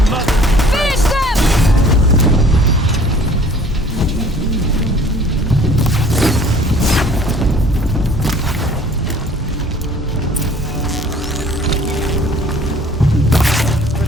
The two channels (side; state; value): both; normal; correlation 0.53